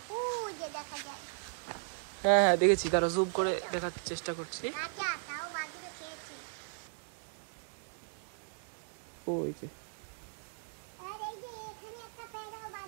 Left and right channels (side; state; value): left; silent; digital silence